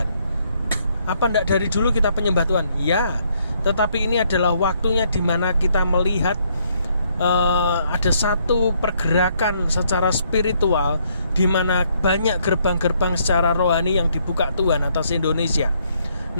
Apa enggak dari dulu kita penyembah Tuhan? Ya, tetapi ini adalah waktunya di mana kita melihat ada satu pergerakan secara spiritual di mana banyak gerbang-gerbang secara rohani yang dibuka Tuhan atas Indonesia.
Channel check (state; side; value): inverted; both; correlation -0.70